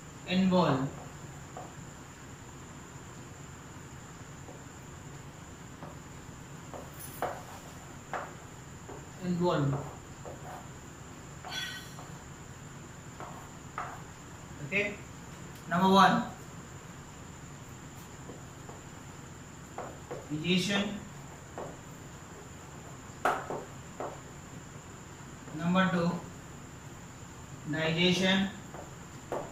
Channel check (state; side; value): identical; both; correlation 1.00